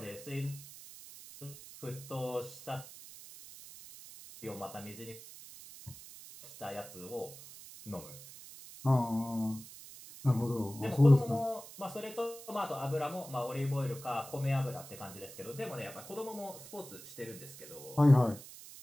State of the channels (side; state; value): right; noise; hiss, 15 dB below the sound